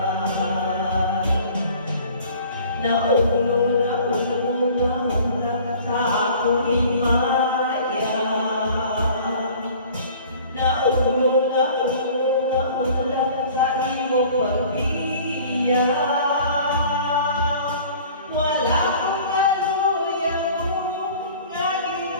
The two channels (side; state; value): both; inverted; correlation -0.48